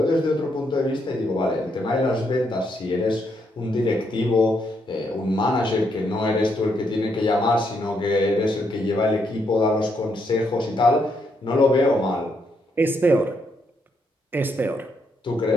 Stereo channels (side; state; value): both; normal; correlation 0.76